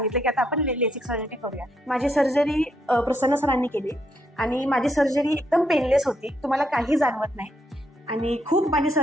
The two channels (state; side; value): normal; both; correlation 0.75